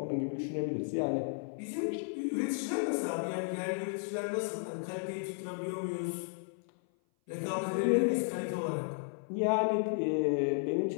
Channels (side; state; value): right; silent; 55 dB below the other